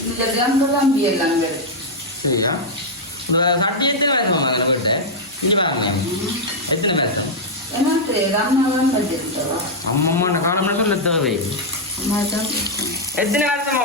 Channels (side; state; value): both; normal; correlation -0.02